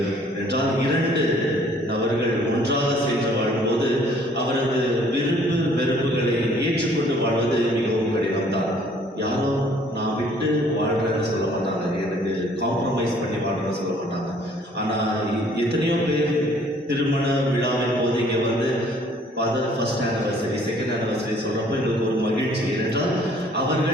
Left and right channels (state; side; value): normal; both; correlation 0.58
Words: என்றால் 2 நபர்கள் ஒன்றாக சேர்ந்து வாழும்போது அவரது விருப்பு வெறுப்புகளை ஏற்றுக்கொண்டு வாழ்வது மிகவும் கடினம்தான். யாரோ நான் விட்டு வாழ்றேன்னு சொல்ல மாட்டாங்க, எனக்கு காம்ப்ரமைஸ் பண்ணி வாழ்றேன்னு சொல்ல மாட்டாங்க. ஆனால் எத்தனையோ பேர் திருமண விழாவின் போது இங்கே வந்து ஃபர்ஸ்ட் ஆனிவர்சரி, செகண்ட் ஆனிவர்சரி சொல்கிறப்போ எங்களுக்கு ஒரு மகிழ்ச்சி. ஏனென்றால்